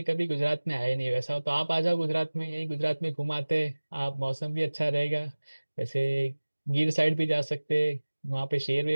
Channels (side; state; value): both; inverted; correlation -1.00